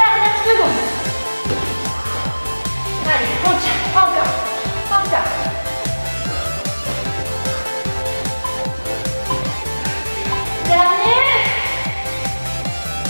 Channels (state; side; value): inverted; both; correlation -1.00